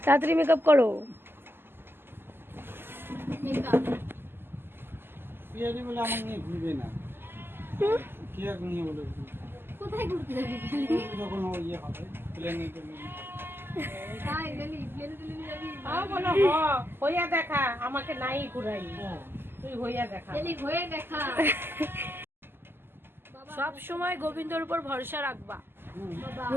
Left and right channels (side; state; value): left; late; 0.11 ms